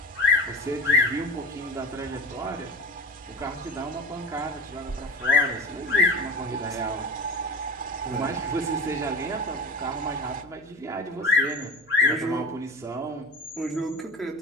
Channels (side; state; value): right; noise; hum, 28 dB below the sound